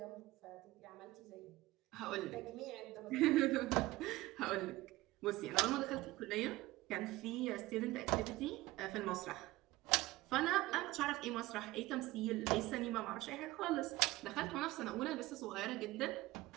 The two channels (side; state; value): left; quieter; 18.7 dB